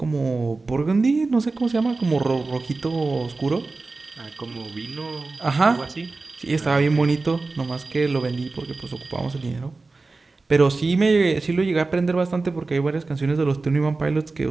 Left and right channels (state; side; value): quieter; left; 3.7 dB